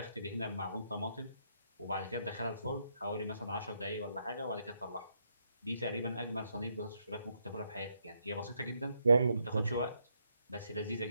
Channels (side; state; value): both; inverted; correlation -0.77